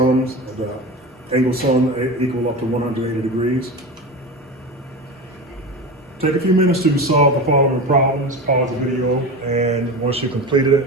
the angle sum equal up to 180 degrees. Take a few minutes to solve the following problems, pause the video, and once you've completed it,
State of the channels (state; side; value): normal; both; correlation 0.25